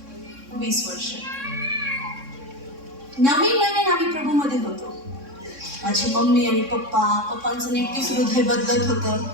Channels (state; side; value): late; left; 3.6 ms